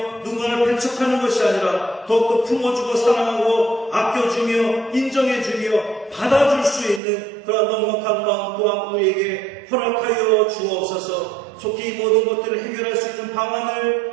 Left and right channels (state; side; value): drops out; left; at 7.0 s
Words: 누군가를 배척하는 것이 아니라 더욱더 품어주고 사랑하고 아껴주며 인정해주며 받아줄 수 있는 그런 넉넉한 마음 또한 우리에게 허락하여 주옵소서. 속히 이 모든 것들을 해결할 수 있는